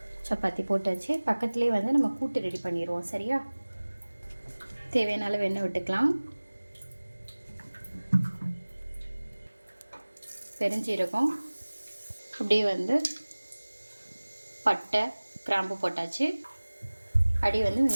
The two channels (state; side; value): inverted; both; correlation -1.00